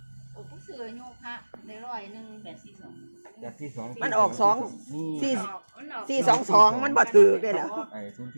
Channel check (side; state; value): both; inverted; correlation -1.00